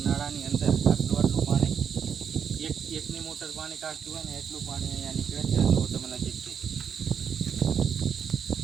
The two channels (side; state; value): left; quieter; 7.4 dB